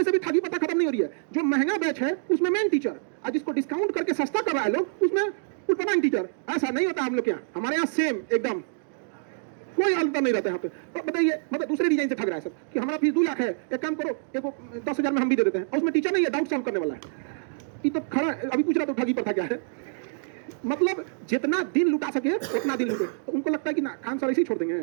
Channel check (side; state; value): left; silent; digital silence